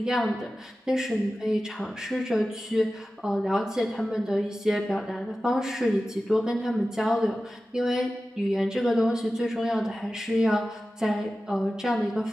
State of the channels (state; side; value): normal; both; correlation 0.95